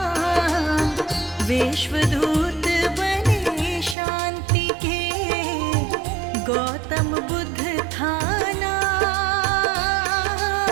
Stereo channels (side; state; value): left; drops out; at 4.0 s